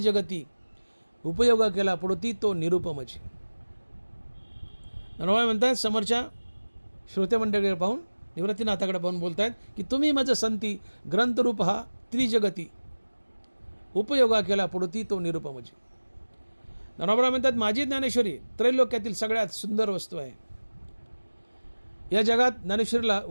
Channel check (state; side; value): inverted; both; correlation -1.00